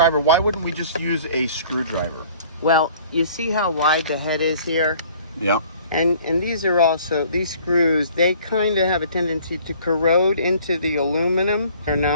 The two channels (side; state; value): both; inverted; correlation -0.53